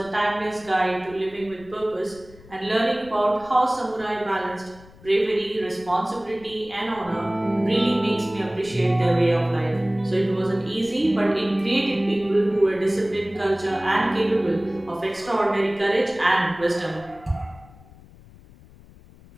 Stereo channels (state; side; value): noise; left; rumble, 23 dB below the sound